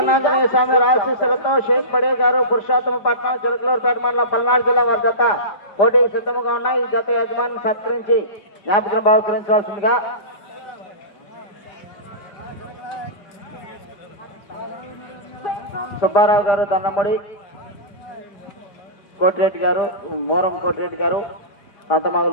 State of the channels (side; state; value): right; late; 4.9 ms